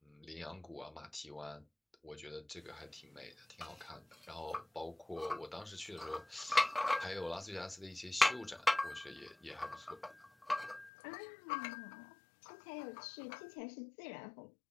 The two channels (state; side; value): drops out; right; at 10.9 s